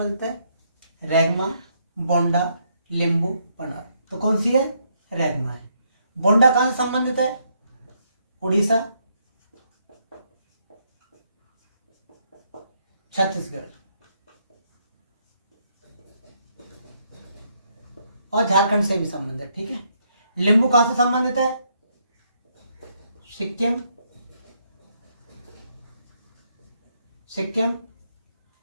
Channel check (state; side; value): inverted; both; correlation -0.74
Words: है? रेगमा, बोंडा, लिंबू, पनार। तो कौन सी है? रेगमा है। बोंडा कहां से संबंधित है? उड़ीसा, छत्तीसगढ़ और झारखंड से भी संबंधित है। ठीक है। लिंबू कहां से संबंधित है? सिक्किम